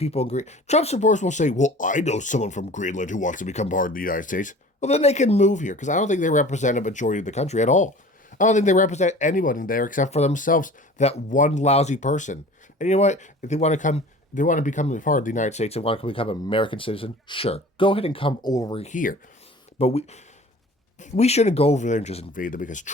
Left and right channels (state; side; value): normal; both; correlation 0.43